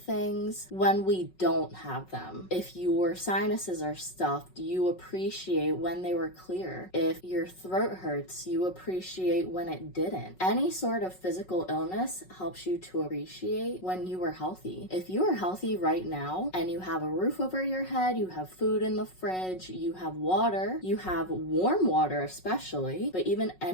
when we don't have them. If your sinuses are stuffed, you appreciate when they were clear. If your throat hurts, you appreciate when it didn't. Any sort of physical illness helps you to appreciate when you were healthy. If you are healthy right now and you have a roof over your head, you have food in the fridge, you have water, you have warm water especially, but even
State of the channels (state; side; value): late; right; 5.4 ms